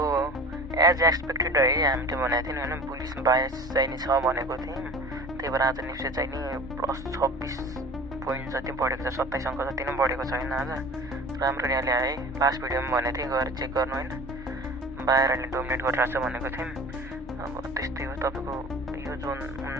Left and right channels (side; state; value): left; noise; hum, 20 dB below the sound